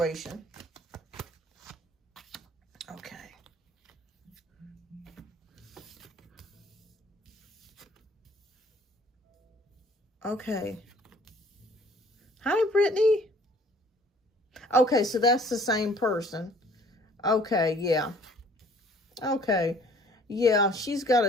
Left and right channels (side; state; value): both; normal; correlation 0.55